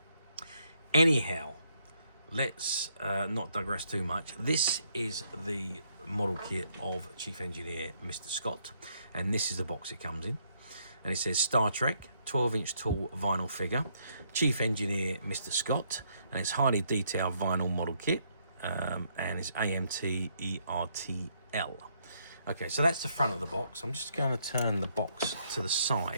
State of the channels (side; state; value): both; inverted; correlation -0.72